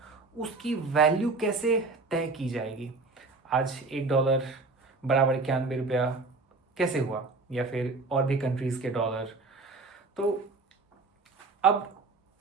उसकी वैल्यू कैसे तय की जाएगी। आज $1 बराबर 91 रुपया कैसे हुआ, या फिर और भी कंट्रीज़ के डॉलर। तो अब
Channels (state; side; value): quieter; left; 3.7 dB